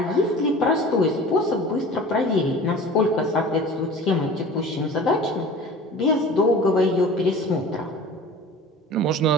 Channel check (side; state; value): both; normal; correlation 0.40